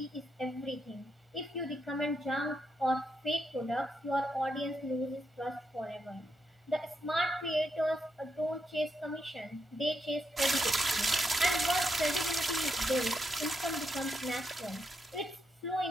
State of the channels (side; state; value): both; normal; correlation 0.82